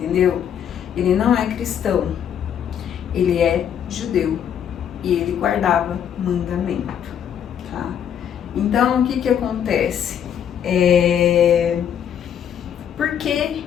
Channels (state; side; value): quieter; right; 9.0 dB